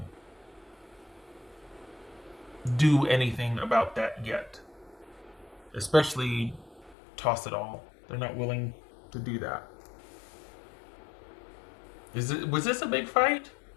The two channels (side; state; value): right; drops out; at 7.0 s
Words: do anything about that yet. Especially toss it all. They're not willing to do that. Was this a big fight?